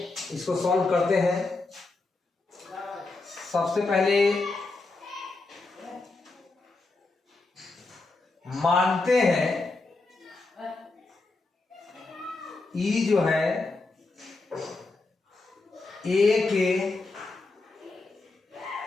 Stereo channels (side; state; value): right; quieter; 3.5 dB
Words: इसको सॉल्व करते हैं। सबसे पहले मानते हैं ई जो है ए के